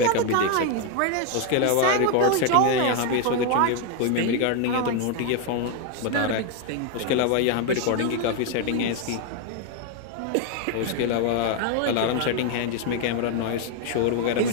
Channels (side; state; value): both; different; correlation 0.01